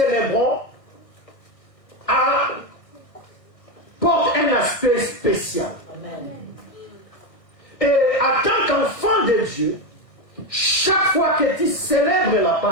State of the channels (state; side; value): late; right; 1.6 ms